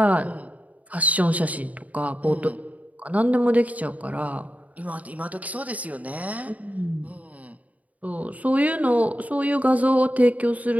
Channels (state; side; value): late; left; 0.072 ms